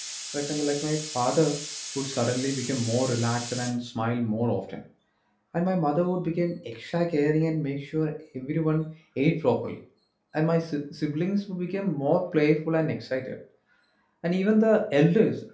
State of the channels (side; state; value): both; identical; correlation 1.00